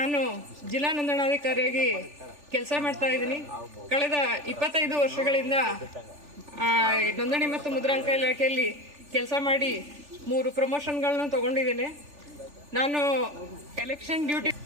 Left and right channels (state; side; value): late; left; 3.4 ms